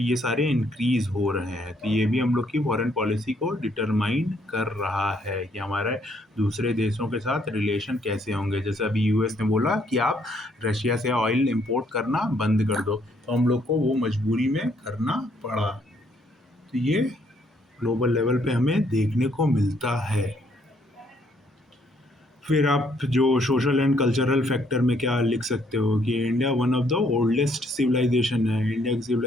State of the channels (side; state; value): both; normal; correlation 0.69